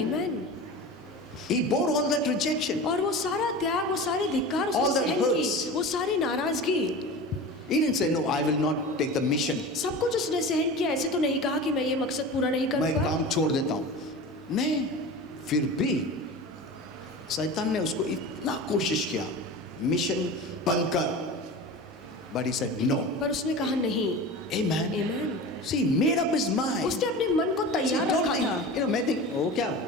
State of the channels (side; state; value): both; normal; correlation 0.32